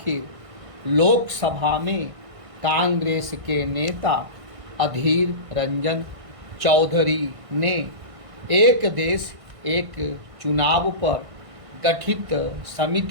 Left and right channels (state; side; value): late; left; 1.6 ms